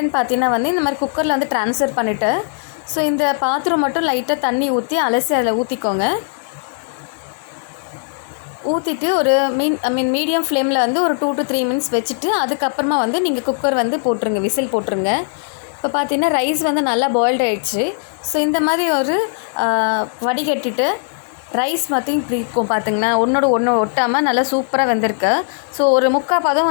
பார்த்திங்கன்னா வந்து இந்த மாதிரி குக்கரில் வந்து ட்ரான்ஸ்ஃபர் பண்ணிவிட்டு ஸோ இந்த பாத்திரம் மட்டும் லைட்டாக தண்ணி ஊற்றி அலசி அதில் ஊற்றிக்கோங்க. ஊற்றிட்டு ஒரு மீடியம் ஃப்ளேமில் வந்து ஒரு 2 to 3 மினிட்ஸ் வச்சுட்டு அதுக்கப்புறமா வந்து நீங்கள் குக்கர் வந்து போட்டுருங்க, விசில் போட்டுருங்க. இப்போ பார்த்தீங்கன்னா ரைஸ் வந்து நல்லா பாயில்டு ஆகிடுச்சு. ஸோ இந்த மாதிரி ஒரு வடிகட்டிட்டு ரைஸ் மாற்றி இப்படி இருக்கும் பார்த்திங்கன்னா ஒன்றோட ஒன்று ஒட்டாமல் நல்லா சூப்பராக வெந்திருக்கு. ஸோ ஒரு 3/4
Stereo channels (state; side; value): silent; right; digital silence